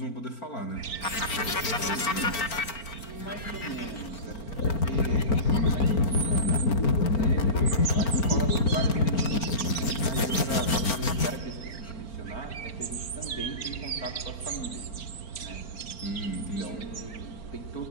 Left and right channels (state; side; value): late; right; 4.4 ms